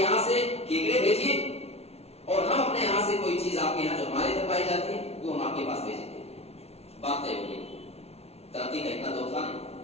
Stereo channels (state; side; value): late; right; 0.30 ms